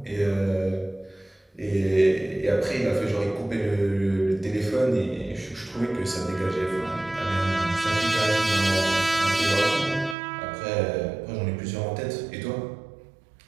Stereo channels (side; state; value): left; drops out; at 10.2 s